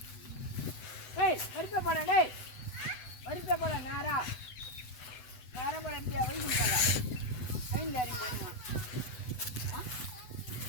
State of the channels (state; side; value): late; right; 8.0 ms